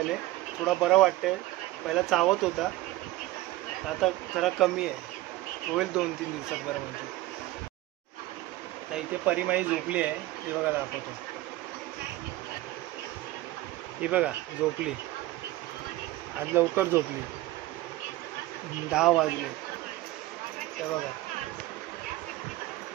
थोडा बरं वाटतंय. पहिला चावत होता, आता जरा कमी आहे. होईल 2-3 दिवसात बरं म्हणजे. तर इथे परिमाई झोपली आहे, हे बघा दाखवतो. ही बघा झोपली, आज लवकर झोपली. 10 वाजले. ते बघा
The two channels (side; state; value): left; quieter; 17.1 dB